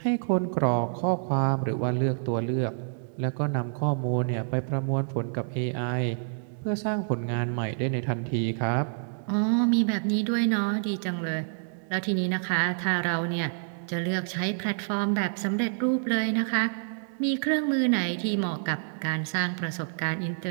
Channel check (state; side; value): silent; left; digital silence